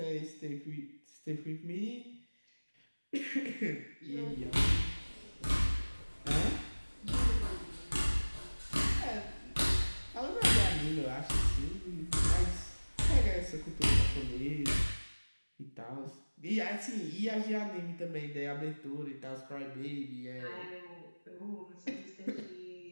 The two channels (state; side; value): inverted; both; correlation -1.00